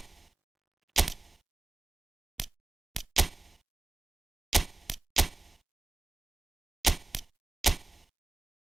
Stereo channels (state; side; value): quieter; left; 3.0 dB